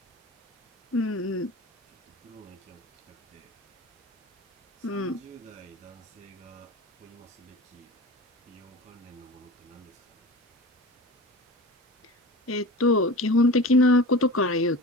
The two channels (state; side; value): normal; both; correlation 0.34